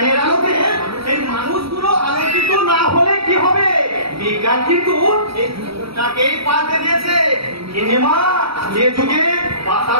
আলোকে এই মানুষগুলো আলোচিত না হলে কি হবে? বিজ্ঞান কিন্তু তাকেই পাল্টে দিয়েছে। গিনিমা, যে যুগে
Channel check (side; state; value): left; late; 0.76 ms